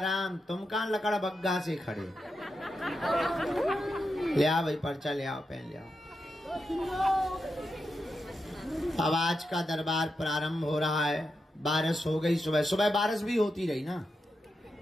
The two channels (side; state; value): both; normal; correlation 0.87